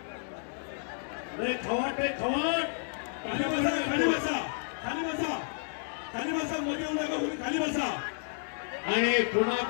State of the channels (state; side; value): silent; right; digital silence